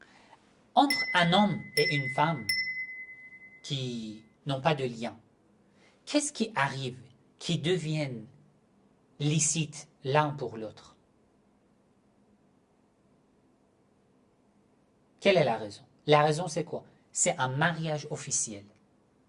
Entre un homme et une femme qui n'ont pas de lien, qu'est-ce qui arrive qui deviennent licites l'un pour l'autre? Quelle est la raison? La raison, c'est quoi? C'est un mariage officiel,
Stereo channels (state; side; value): identical; both; correlation 1.00